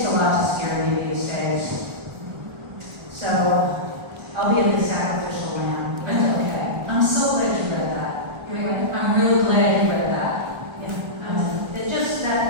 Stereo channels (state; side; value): late; left; 1.3 ms